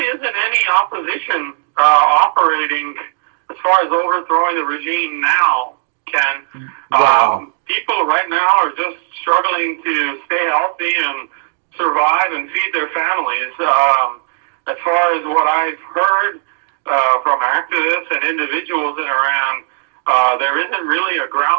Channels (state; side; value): silent; left; digital silence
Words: isn't any opposition operating as far as overthrowing the regime now, Ken. Wow. People right now are just struggling to stay healthy and survive and feed their families. As far as what I've heard from activists and individuals in Iran, there isn't really a